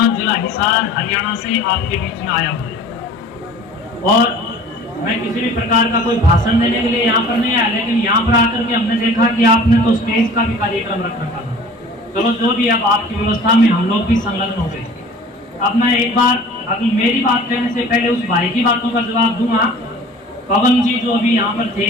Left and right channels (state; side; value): normal; both; correlation 0.45